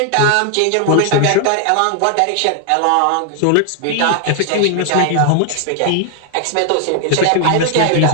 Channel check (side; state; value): both; different; correlation 0.00